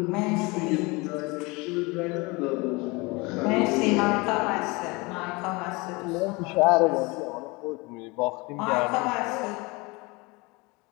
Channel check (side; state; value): right; quieter; 25.4 dB